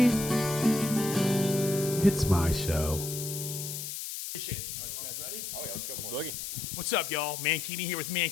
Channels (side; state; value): left; noise; hiss, 6 dB below the sound